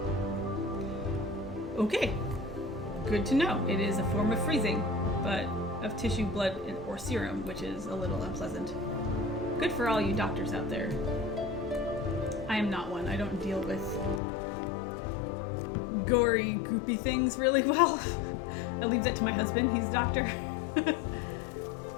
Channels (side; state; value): right; drops out; at 14.2 s